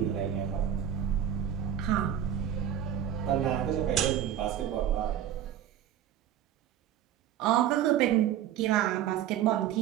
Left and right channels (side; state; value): left; quieter; 10.4 dB